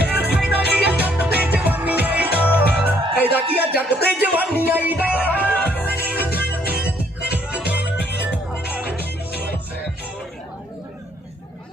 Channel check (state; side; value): normal; both; correlation 0.66